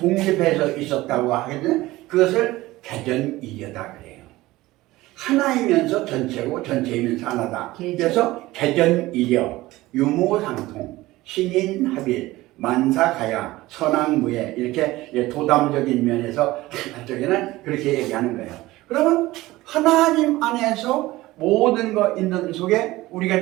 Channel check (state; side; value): quieter; left; 18.3 dB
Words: 있었다고 하겠는 그것을 개전이려다 그래요. 하나이면서 전체고 전체이면서 하나다. 그래서 개전이려, 유무상통, 신인합일, 만사가야, 선악무예 이렇게 도담적인 면에서 한쪽에는 그렇게 얘기하는 거예요. 그러면 하나님 안에서 모든 거 있는 속에